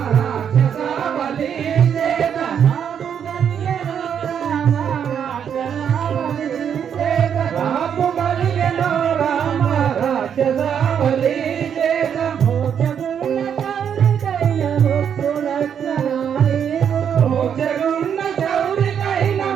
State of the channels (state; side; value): quieter; left; 8.2 dB